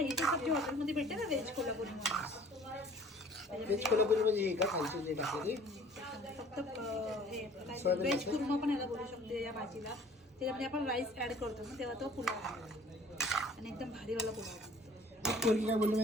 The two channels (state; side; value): normal; both; correlation 0.52